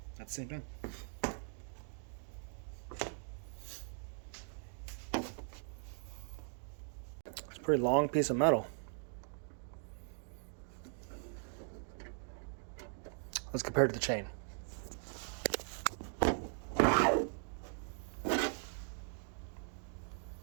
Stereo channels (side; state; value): left; silent; 51 dB below the other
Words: At the same time. It's a pretty long piece of metal. Let's compare it to the chain.